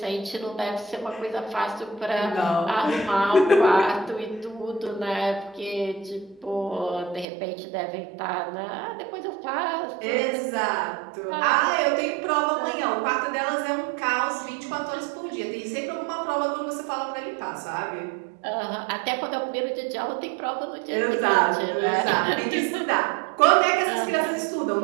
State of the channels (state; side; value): drops out; left; at 7.2 s